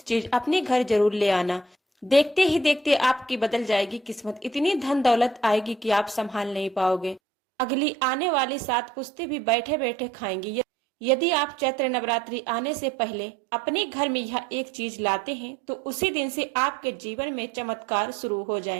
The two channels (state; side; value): drops out; left; at 7.2 s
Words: चीज अपने घर जरूर ले आना। देखते ही देखते आपकी बदल जाएगी किस्मत। इतनी धन दौलत आएगी कि आप संभाल नहीं पाओगे। अगली आने वाली 7 पुश्तें भी बैठे बैठे खाएंगी। यदि आप चैत्र नवरात्रि आने से पहले अपने घर में यह एक चीज लाते हैं तो उसी दिन से आपके जीवन में चमत्कार शुरू हो